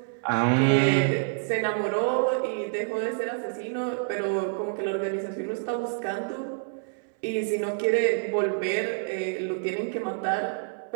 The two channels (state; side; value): silent; left; 60 dB below the other